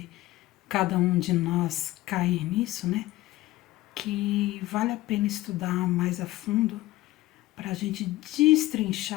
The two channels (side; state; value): right; quieter; 17.0 dB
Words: cada um de nós cair nisso, né? Que vale a pena estudar mais a fundo para a gente